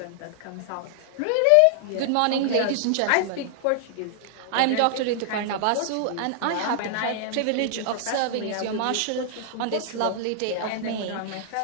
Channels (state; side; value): different; both; correlation -0.01